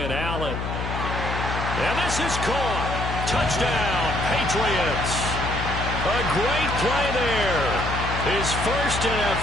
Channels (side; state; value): left; noise; hum, 4 dB below the sound